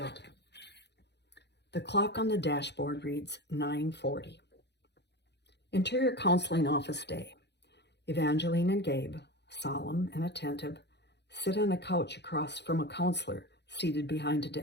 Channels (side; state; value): right; late; 0.50 ms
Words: The clock on the dashboard reads 9:40. Interior counseling office day. Evangeline and Gabe, solemn and attentive, sit on a couch across from a counselor seated behind a